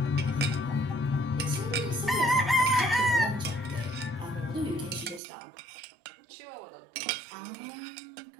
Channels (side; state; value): left; drops out; at 5.2 s